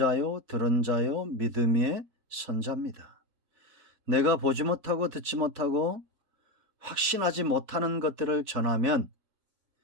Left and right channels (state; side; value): late; left; 4.1 ms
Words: 들은 자요, 믿음 위의 선자입니다. 내가 보지 못하고 듣지 못하고 확신하지 못하는 것들을 전하면